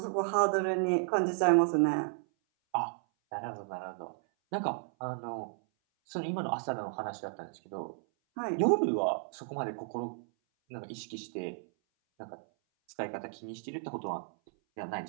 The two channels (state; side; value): silent; left; 56 dB below the other